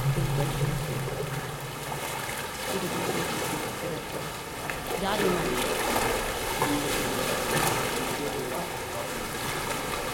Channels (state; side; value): identical; both; correlation 1.00